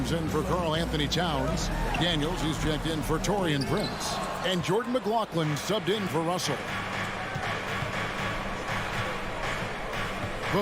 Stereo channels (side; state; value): both; identical; correlation 1.00